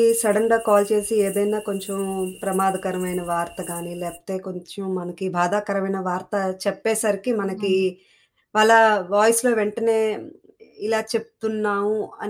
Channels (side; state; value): both; identical; correlation 1.00